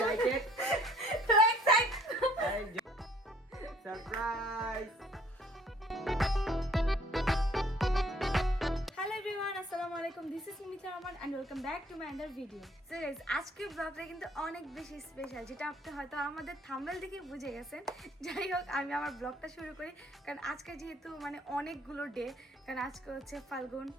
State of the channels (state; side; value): normal; both; correlation 0.59